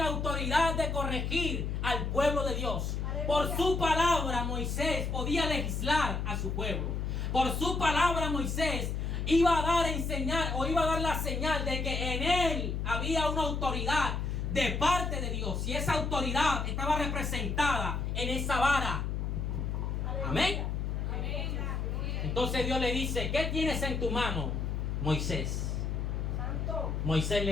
autoridad de corregir al pueblo de Dios. Por su palabra Moisés podía legislar a su pueblo. Por su palabra Moisés iba a dar a enseñar o iba a dar la señal de que en él había una autoridad de parte de Dios. Y esa autoridad estaba representada en esa vara. Amén. Entonces Dios le dice, ¿qué tienes en tu mano, Moisés? Santo. Moisés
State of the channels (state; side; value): noise; left; hum, 1 dB below the sound